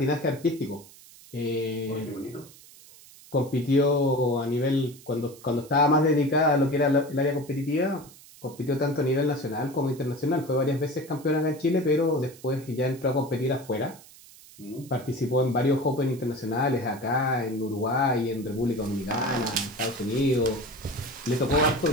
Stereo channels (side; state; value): right; noise; hiss, 22 dB below the sound